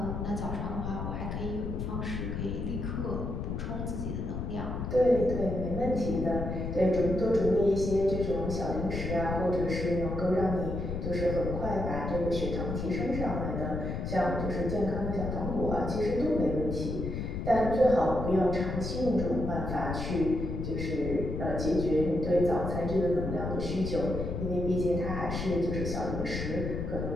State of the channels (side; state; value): left; noise; rumble, 4 dB below the sound